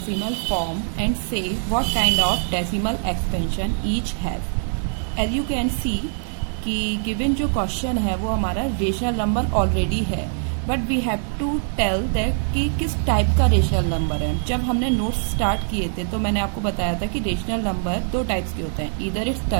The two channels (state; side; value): silent; left; digital silence